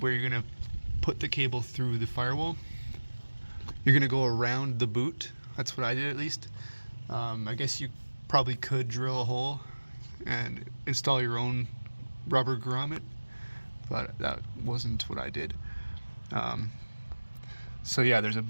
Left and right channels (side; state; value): both; inverted; correlation -1.00